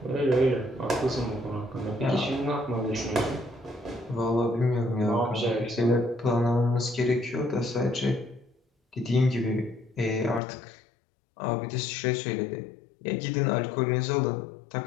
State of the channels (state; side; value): drops out; right; at 10.4 s